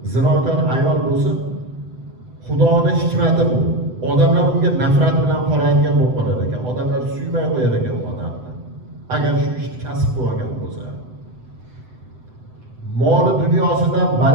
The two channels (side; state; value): left; late; 7.9 ms